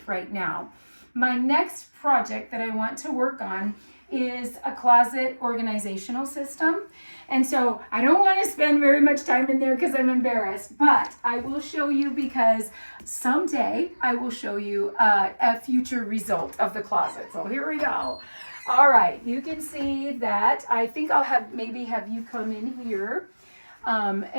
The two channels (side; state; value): both; inverted; correlation -1.00